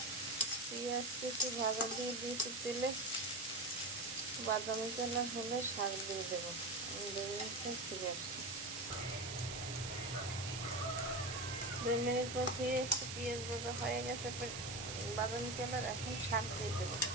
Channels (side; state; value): right; noise; hiss, 5 dB below the sound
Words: পেঁয়াজ কেটে ভাজা দিয়ে দিয়েছি তেলে। বাদামি কালার হলে শাক দিয়ে দেবো। আমি 2 মিনিট পর ফিরে আসছি। 2 মিনিট পর ফিরে এসে পেঁয়াজ ভাজা হয়ে গেছে, বাদামি কালার। এখন শাক দিয়ে দেবো।